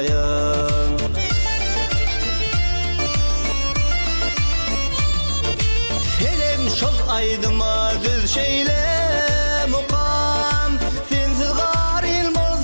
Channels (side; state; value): both; inverted; correlation -1.00